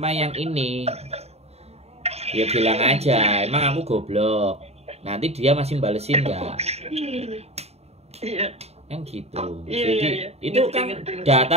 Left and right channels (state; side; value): late; left; 0.30 ms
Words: yang ini? Ya bilang aja, emang aku goblok. Nanti dia masih balesin nggak? Iya. Kan gitu. Jadi itu kan